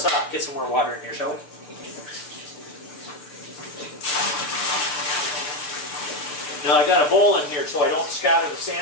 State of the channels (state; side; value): late; right; 6.7 ms